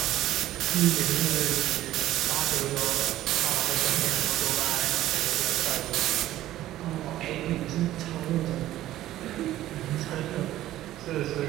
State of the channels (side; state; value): left; quieter; 14.2 dB